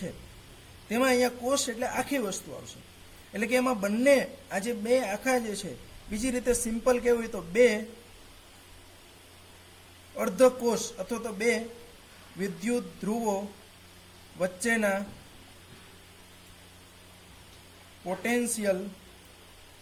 તેમાં અહીંયા કોષ એટલે આખી વસ્તુ આવશે. એટલે કે એમાં બંને આ જે બે આખા જે છે, બીજી રીતે સિમ્પલ કહેવું હોય તો બે અર્ધકોષ અથવા તો બે વિદ્યુત ધ્રુવો વચ્ચેના પોટેન્શિયલ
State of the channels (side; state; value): both; identical; correlation 1.00